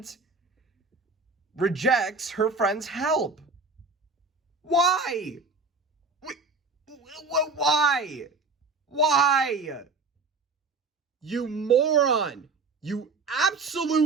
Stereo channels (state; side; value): quieter; left; 3.9 dB